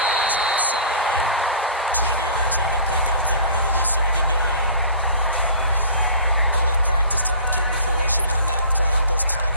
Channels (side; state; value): both; inverted; correlation -0.43